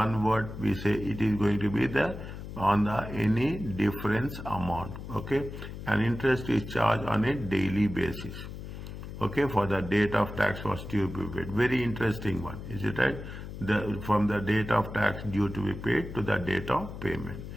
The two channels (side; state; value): left; noise; hum, 10 dB below the sound